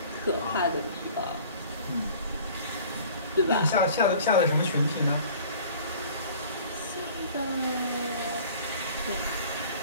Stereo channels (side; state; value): both; inverted; correlation -0.48